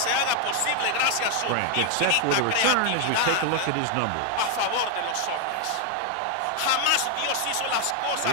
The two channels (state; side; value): different; both; correlation 0.00